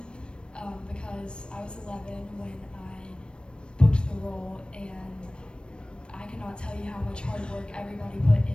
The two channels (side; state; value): right; late; 0.055 ms